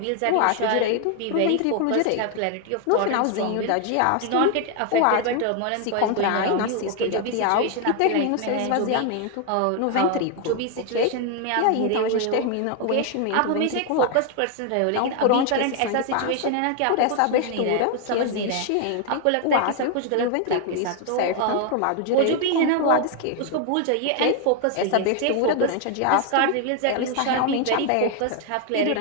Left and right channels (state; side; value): different; both; correlation 0.00